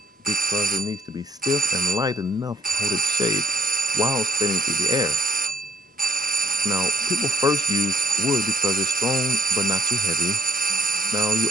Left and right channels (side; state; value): both; normal; correlation 0.63